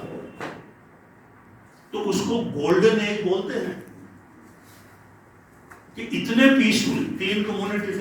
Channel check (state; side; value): identical; both; correlation 1.00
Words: تو اس کو گولڈن ایج بولتے ہیں کہ اتنے پیسفل. 3 کمیونٹی